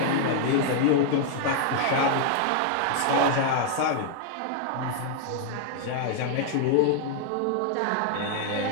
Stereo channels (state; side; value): different; both; correlation -0.01